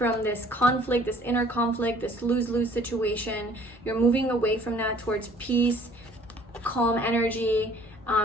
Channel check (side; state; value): both; normal; correlation 0.56